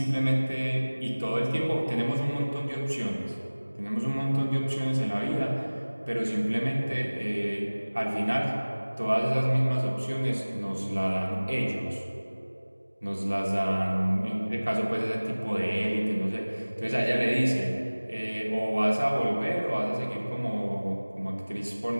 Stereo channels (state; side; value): inverted; both; correlation -1.00